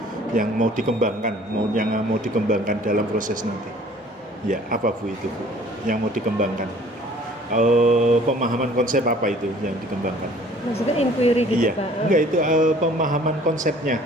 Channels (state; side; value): normal; both; correlation 0.53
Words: Yang mau dikembangkan, yang mau dikembangkan dalam proses nanti. Ya, apa Bu itu Bu? Yang mau dikembangkan? Pemahaman konsep apa itu yang dikembangkan? Maksudnya inquiry gitu, Pak? Enggak, itu pemahaman konsepnya,